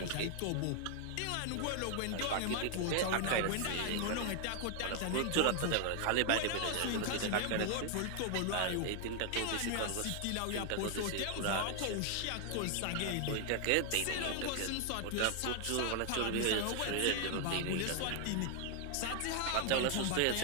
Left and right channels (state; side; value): different; both; correlation 0.00